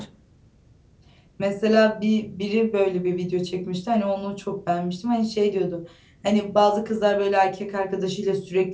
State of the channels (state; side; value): identical; both; correlation 1.00